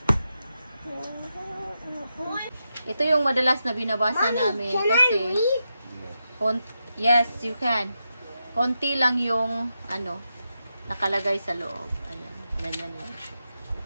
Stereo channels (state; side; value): inverted; both; correlation -0.87